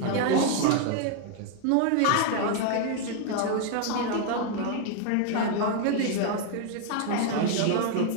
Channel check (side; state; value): both; different; correlation 0.00